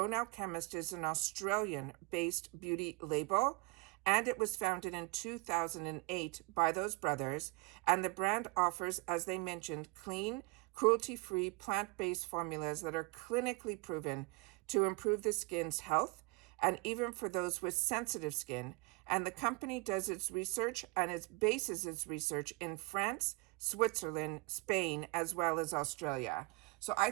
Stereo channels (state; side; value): quieter; left; 26.2 dB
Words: Alchemist is an Australian-based beauty label, and it was founded in 2008 by those brothers, and the brand offers, as they mentioned, clean, cruelty-free, plant-based formulas that are clinically proven to improve the skin's health, and even for those with sensitive skin. And the company does its research and it bases its research in France, Switzerland, Spain, as well as Australia. So I